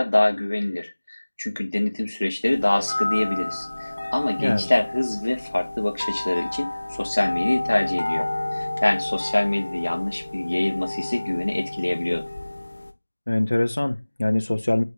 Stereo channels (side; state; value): both; inverted; correlation -1.00